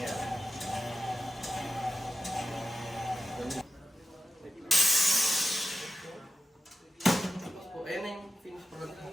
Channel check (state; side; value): normal; both; correlation 0.91